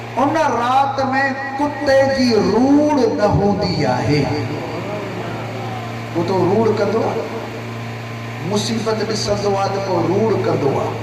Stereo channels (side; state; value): both; identical; correlation 1.00